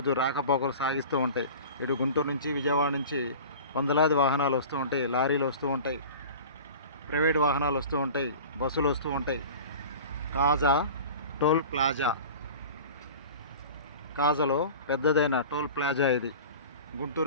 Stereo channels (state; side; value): inverted; both; correlation -0.38